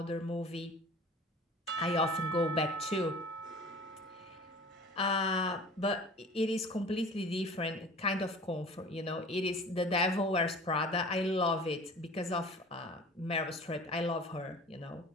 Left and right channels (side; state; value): both; normal; correlation 0.43